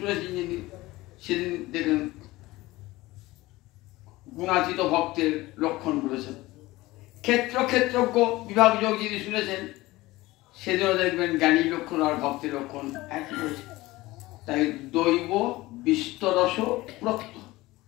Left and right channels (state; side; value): quieter; right; 19.2 dB